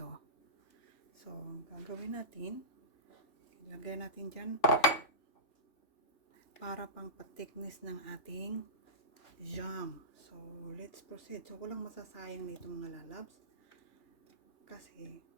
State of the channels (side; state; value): right; late; 3.1 ms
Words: So, gagawin natin, ilagay natin dyan para pang patiknis ng ating jam. So, let's proceed. So, walang masasayang nito mga lalabs. Kasi,